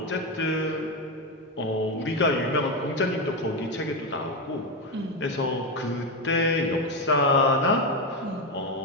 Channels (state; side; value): normal; both; correlation 0.11